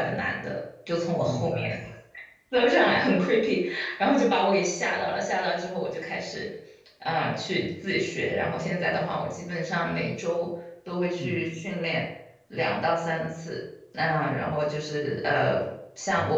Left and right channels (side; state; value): both; identical; correlation 1.00